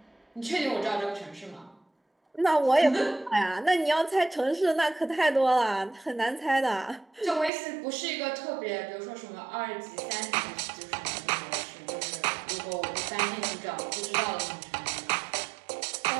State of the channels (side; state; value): left; drops out; at 7.5 s